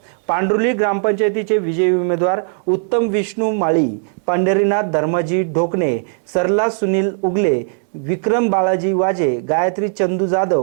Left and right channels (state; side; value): silent; left; 68 dB below the other